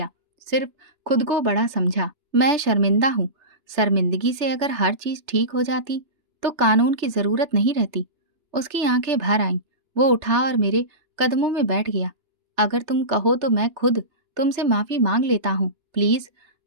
सिर्फ खुद को बड़ा समझा। मैं शर्मिंदा हूँ। शर्मिंदगी से अगर हर चीज ठीक हो जाती तो कानून की जरूरत नहीं रहती। उसकी आंखें भर आईं। वो उठा और मेरे कदमों में बैठ गया। अगर तुम कहो तो मैं खुद तुमसे माफी मांग लेता हूँ। प्लीज,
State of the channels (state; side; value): late; left; 2.9 ms